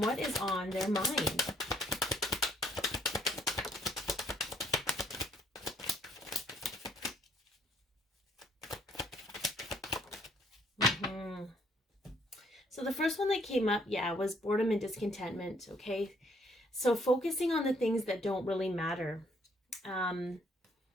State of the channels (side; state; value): both; normal; correlation 0.66